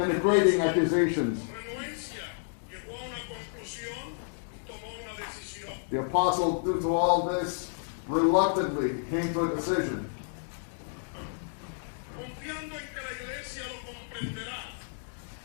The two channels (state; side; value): silent; right; digital silence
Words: accusations. The apostle, due to all this, reluctantly came to a decision.